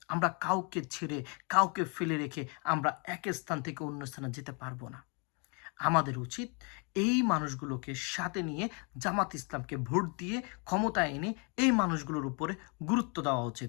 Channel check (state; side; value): quieter; right; 34.4 dB